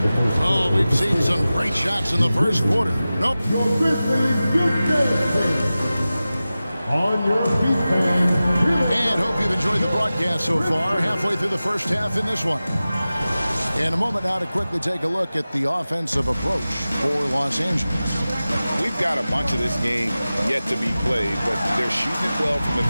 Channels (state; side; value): inverted; both; correlation -0.96